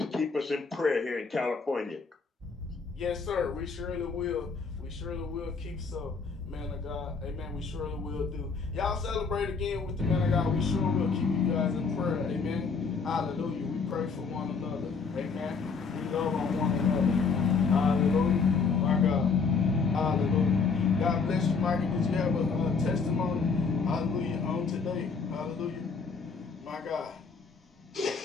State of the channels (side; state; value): right; quieter; 4.9 dB